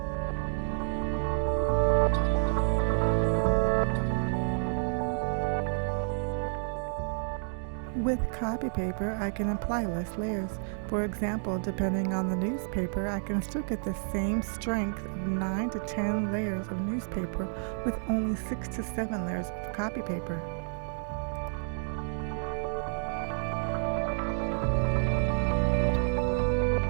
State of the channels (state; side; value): silent; left; digital silence